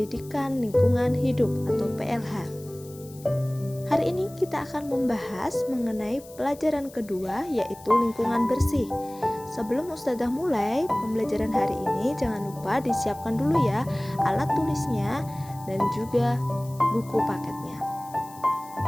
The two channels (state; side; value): noise; left; hiss, 21 dB below the sound